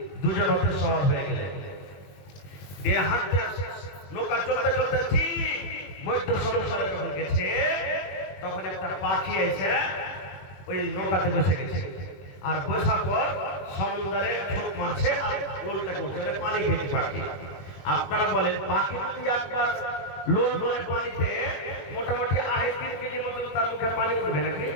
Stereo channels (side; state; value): right; late; 21 ms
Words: দুজন হতে সওয়ার হয়ে গেলেন। এ হাঁটতে নৌকা চলতে চলতে ঠিক মধ্য সমুদ্রে যখন গেছে, তখন একটা পাখি এসে ওই নৌকাতে বসে গেছে। আর বসার পর সমুদ্রে ছোট মারছে আর লোলটা করছে, পানি খেয়েছে পাখি। আপনারা বলেন পাখি যদি আপনার লোল মানে পানিতে মোটামুটি 3.5 কেজি মতো তার মুখে পানি উঠবে নাকি?